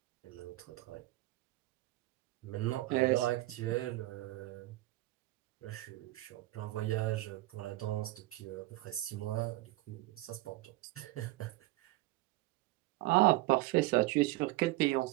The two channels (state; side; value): quieter; left; 18.7 dB